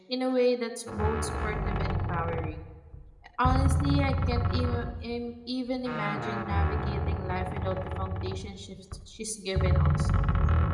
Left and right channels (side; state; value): both; identical; correlation 1.00